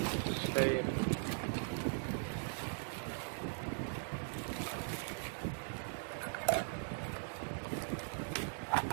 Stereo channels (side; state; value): left; silent; 51 dB below the other